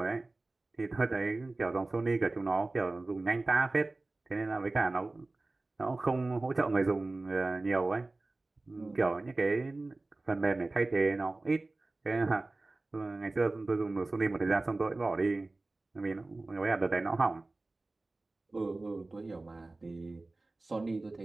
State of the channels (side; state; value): left; quieter; 3.1 dB